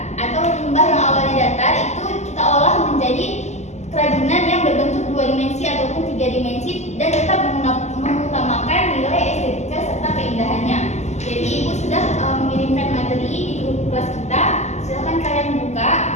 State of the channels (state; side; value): late; right; 0.33 ms